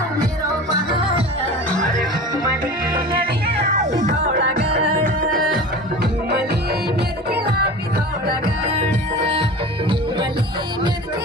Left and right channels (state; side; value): normal; both; correlation 0.35